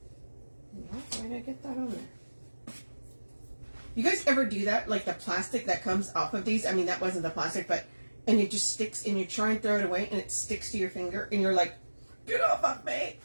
Why did I get that on there? You guys ever do that? Like the plastic that comes off of these? I mean, that wasn't the plastic, but, and it just sticks and you try and throw it away and it sticks to your finger and you're like, get off of me.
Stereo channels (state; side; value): inverted; both; correlation -1.00